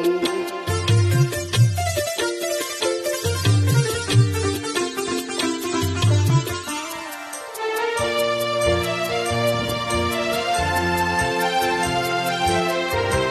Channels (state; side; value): identical; both; correlation 1.00